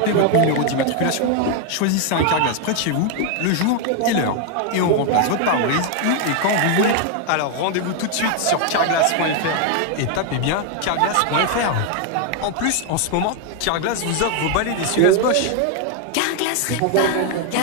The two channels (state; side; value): different; both; correlation 0.01